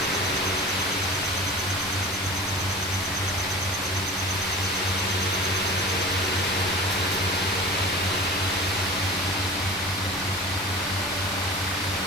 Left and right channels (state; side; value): normal; both; correlation 0.37